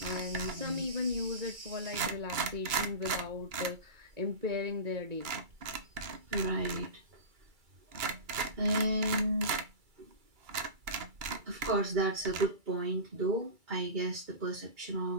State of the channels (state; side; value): late; left; 2.3 ms